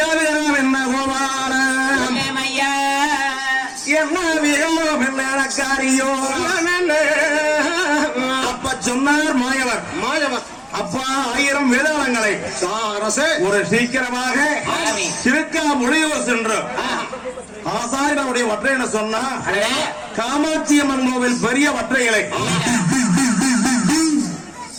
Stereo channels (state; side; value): identical; both; correlation 1.00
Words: என்ன கோபாலம் என்ன வீரம் என்ன காரியோ அப்ப சொன்னார் மாயவர் அப்பா 1000 வேதாளங்களை ஒரு சீக்கிரமாக திருக்கா மொழியூர் சென்று ஆசாரியனுடைய வற்றை என்ன சொன்னா காமாட்சி அம்மன் கோவில் பெரிய வற்றைகளை